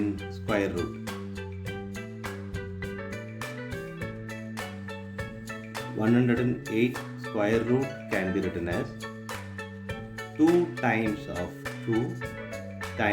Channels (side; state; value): both; identical; correlation 1.00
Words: square root. 108 square root can be written as 2 times of 2